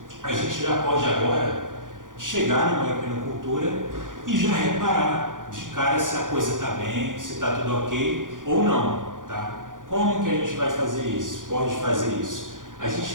a gente já pode agora chegar numa equinocultura e já reparar de cara se a coisa está bem, se está tudo ok ou não. Tá? Como que a gente vai fazer isso? Pode fazer isso? A gente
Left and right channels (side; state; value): left; late; 0.88 ms